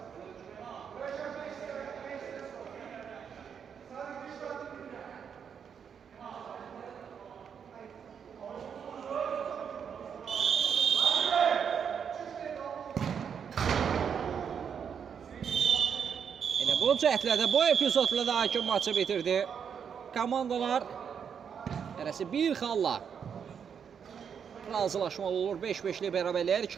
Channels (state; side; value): quieter; left; 7.4 dB